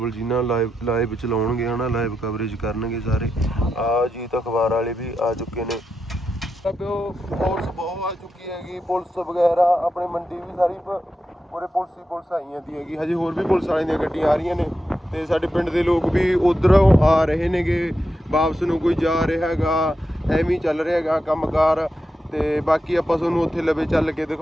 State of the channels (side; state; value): both; normal; correlation 0.87